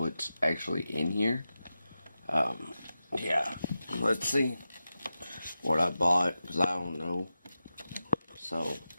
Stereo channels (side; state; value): both; inverted; correlation -0.92